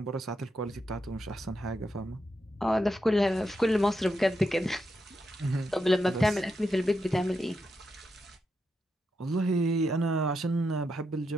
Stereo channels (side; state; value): both; normal; correlation 0.84